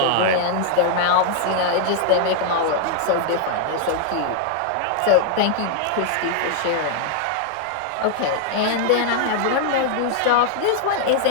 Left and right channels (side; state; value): both; different; correlation -0.01